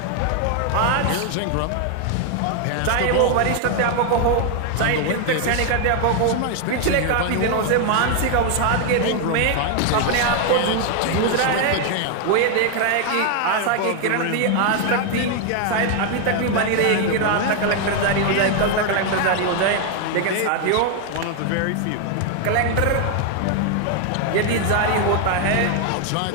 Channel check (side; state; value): both; different; correlation 0.01